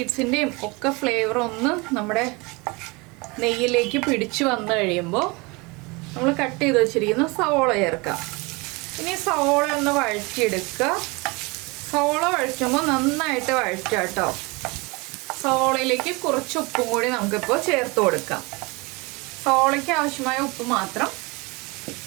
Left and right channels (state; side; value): quieter; left; 26.5 dB